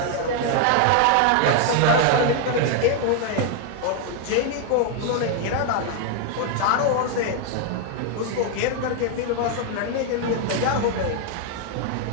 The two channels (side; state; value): both; different; correlation 0.00